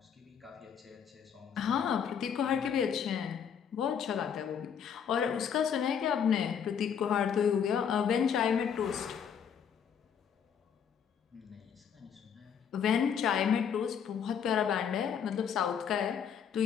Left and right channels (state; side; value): quieter; right; 7.7 dB